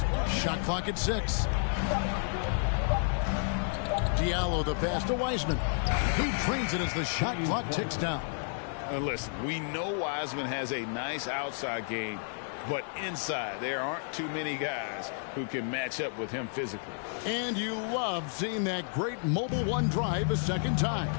Shot clock at 6. Diallo the pass to Wiseman. He trains it as the shot clock ticks down. Listen, we know Wiseman has a nice outside game, but inside there aren't too many guys who can match up with him physically. And you love seeing that great mobile one drive a second time.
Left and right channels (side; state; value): right; silent; digital silence